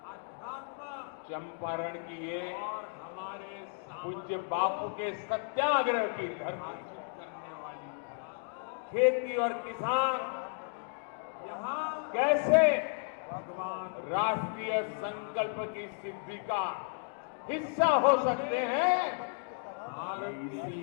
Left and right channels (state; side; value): silent; right; 55 dB below the other